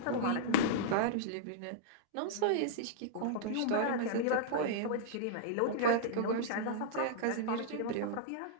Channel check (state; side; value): different; both; correlation -0.02